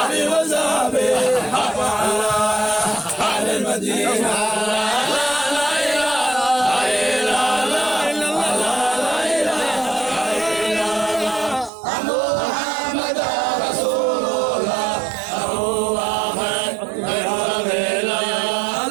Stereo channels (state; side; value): drops out; left; at 11.7 s